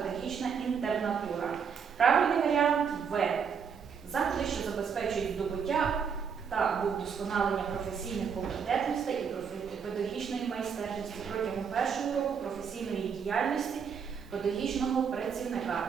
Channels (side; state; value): left; quieter; 6.7 dB